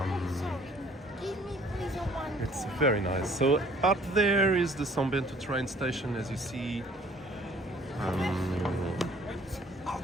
It's very nice. So up there is the São Bento train station, as you see.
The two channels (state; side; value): normal; both; correlation 0.56